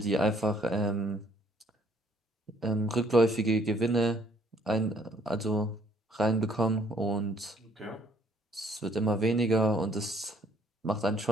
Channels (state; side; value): normal; both; correlation 0.63